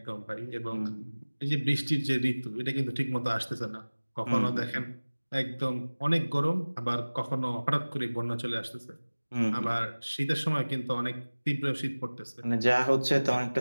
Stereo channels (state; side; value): inverted; both; correlation -1.00